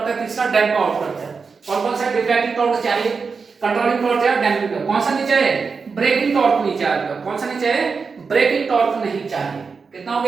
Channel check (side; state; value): left; quieter; 5.1 dB